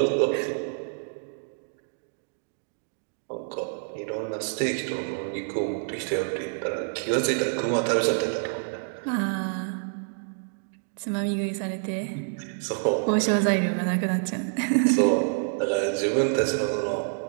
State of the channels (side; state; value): left; silent; digital silence